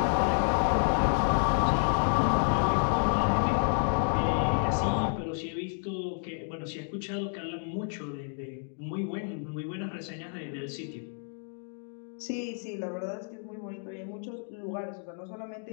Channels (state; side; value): silent; right; 58 dB below the other